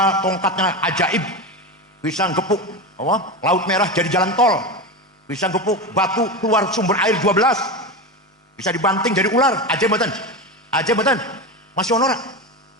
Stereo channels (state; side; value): normal; both; correlation 0.20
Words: tongkatnya ajaib, bisa gepuk laut merah jadi jalan tol, bisa gepuk batu keluar sumber air 12, bisa dibanting jadi ular. Ajaib betul masih honor,